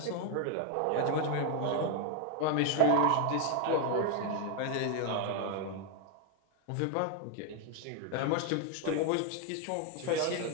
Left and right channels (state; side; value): different; both; correlation 0.01